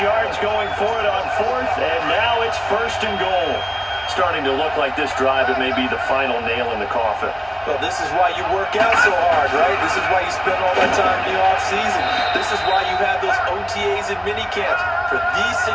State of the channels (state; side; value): identical; both; correlation 1.00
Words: yards going for it on 4th, and now it's 1st and goal. Starting to look like this drive, it may be the final nail in the coffin. Well, this is why you work out so hard, right? This is why you spend all that time in the offseason. This is why you have those OTAs and mini camps for these